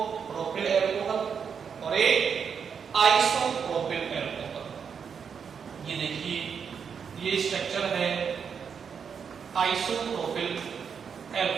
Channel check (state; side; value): quieter; left; 6.7 dB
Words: प्रोपिल एल्कोहल और एक आइसोप्रोपिल एल्कोहल। ये देखिए, ये स्ट्रक्चर है आइसोप्रोपिल